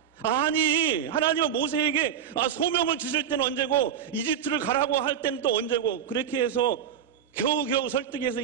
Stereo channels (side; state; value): left; quieter; 8.7 dB